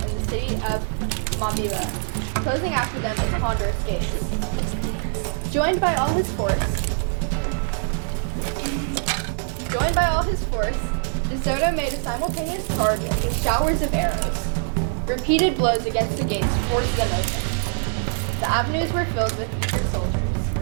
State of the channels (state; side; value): silent; left; 62 dB below the other